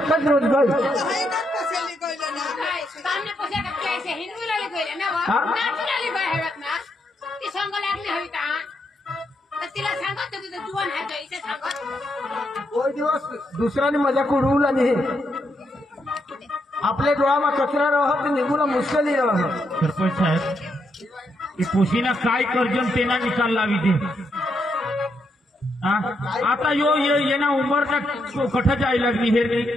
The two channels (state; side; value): normal; both; correlation 0.79